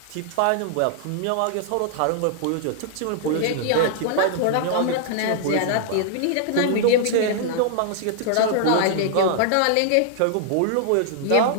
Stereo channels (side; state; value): both; different; correlation -0.01